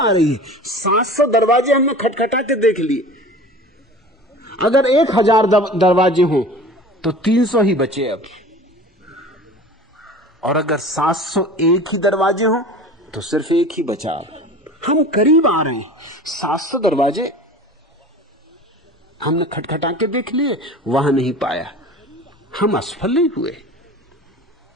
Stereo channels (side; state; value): both; normal; correlation 0.39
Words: रही है। 700 दरवाजे हमने खटखटा के देख लिए। अगर 1000 दरवाजे हों तो 300 ही बचे अब, और अगर 701 ही दरवाजे हों तो सिर्फ एक ही बचा। हम करीब आ रहे हैं। 700 दरवाजे हमने खटखटा के देख लिए, वहां नहीं पाया, हम असफल नहीं हुए।